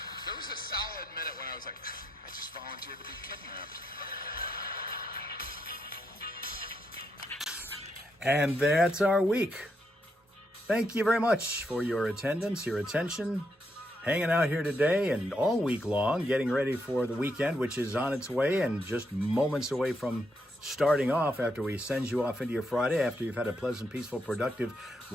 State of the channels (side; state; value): both; normal; correlation 0.80